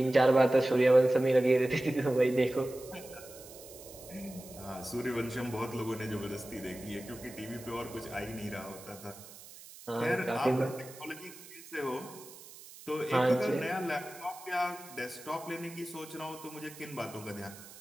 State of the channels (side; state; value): right; noise; hiss, 18 dB below the sound